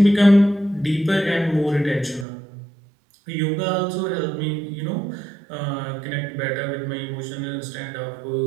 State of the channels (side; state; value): left; drops out; at 2.2 s